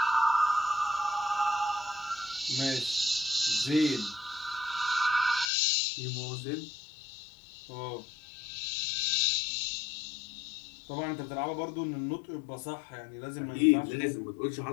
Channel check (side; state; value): right; drops out; at 5.5 s